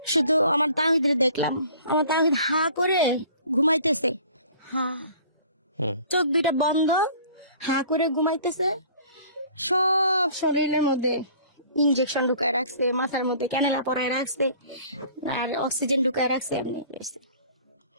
শুধু আমার তাহিদের দেখলাম, আমার তাহিদ হা করে ঘুমাইতেছে, হা, চোখ দুইটা বন্ধ, হা করে ঘুমাইতেছে। সব শরীরের মধ্যে ইনজেকশন ঢুকায় রাখছে, মাথার মধ্যে ক্যানেলা পরায় রাখছে, আর অক্সিজেন ঢুকায় রাখছে, এমনি গেছে।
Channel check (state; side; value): inverted; both; correlation -0.50